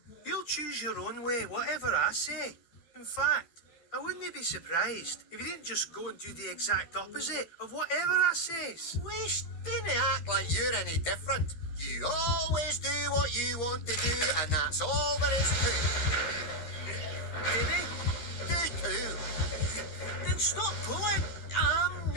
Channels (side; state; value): right; late; 13 ms